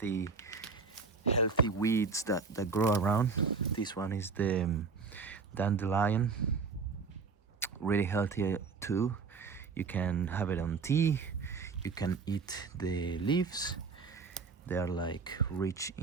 weeds that grow around. This one is the dandelion, really healthy too. You can have it on tea. You can eat the leaves. They are like rich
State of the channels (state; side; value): quieter; left; 4.9 dB